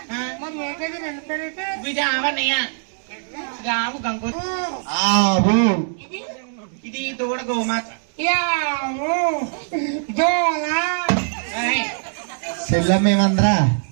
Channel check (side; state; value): left; silent; 64 dB below the other